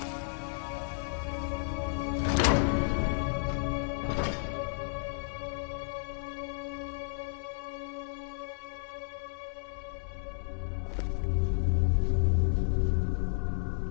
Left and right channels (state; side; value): silent; right; 56 dB below the other